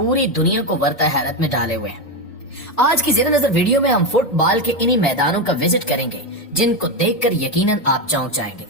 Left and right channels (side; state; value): right; late; 1.7 ms